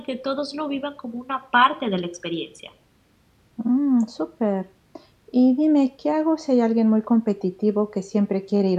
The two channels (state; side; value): identical; both; correlation 1.00